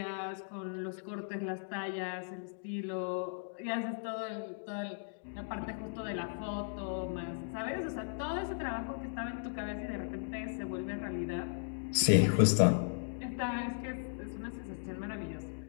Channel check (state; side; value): silent; right; digital silence